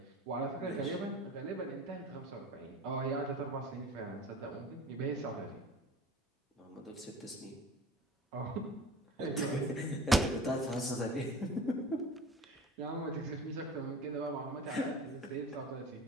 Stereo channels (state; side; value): normal; both; correlation 0.39